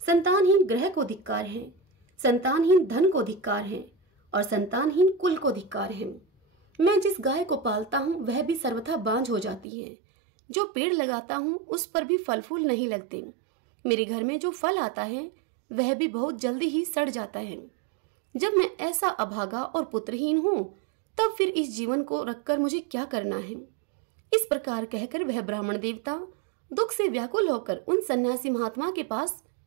संतानहीन ग्रह को धिक्कार है, संतानहीन धन को धिक्कार है और संतानहीन कुल को धिक्कार है। मैं जिस गाय को पालता हूँ वह भी सर्वथा बांझ हो जाती है। जो पेड़ लगाता हूँ उस पर भी फल फूल नहीं लगते। मेरे घर में जो फल आता है वह भी बहुत जल्दी ही सड़ जाता है। जब मैं ऐसा अभागा और पुत्रहीन हूँ तब फिर इस जीवन को रखकर मुझे क्या करना है। इस प्रकार कहकर वह ब्राह्मण देवता दुख से व्याकुल होकर उन सन्यासी महात्मा के पास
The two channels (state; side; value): drops out; left; at 9.7 s